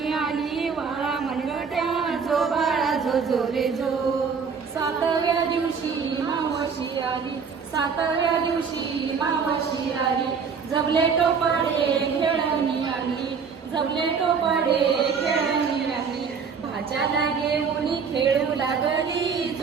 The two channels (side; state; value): left; quieter; 5.9 dB